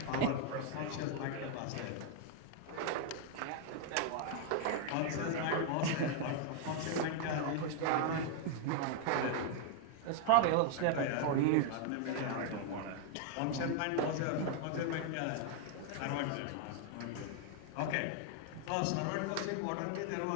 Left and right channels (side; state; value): both; different; correlation 0.00